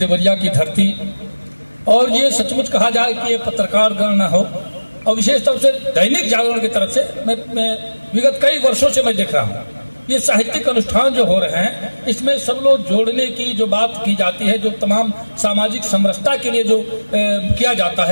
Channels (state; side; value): inverted; both; correlation -1.00